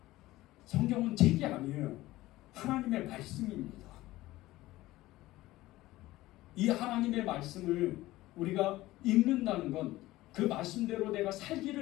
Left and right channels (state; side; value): quieter; right; 17.3 dB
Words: 성경은 책이 아니에요. 하나님의 말씀입니다. 이 하나님의 말씀을 우리가 읽는다는 건 그 말씀대로 내가